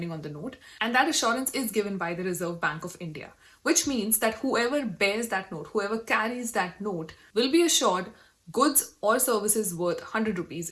on the note, and that assurance is given by the Reserve Bank of India, which means that whoever bears that note, whoever carries that note will be assured goods or services worth 100 rupees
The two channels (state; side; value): identical; both; correlation 1.00